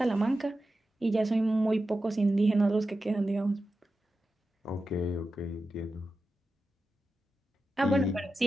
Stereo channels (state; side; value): normal; both; correlation 0.92